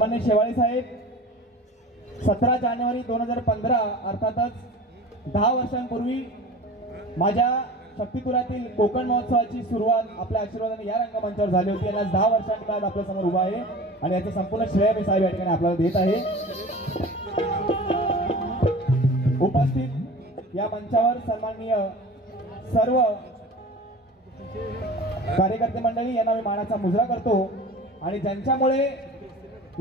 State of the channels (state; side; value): normal; both; correlation 0.38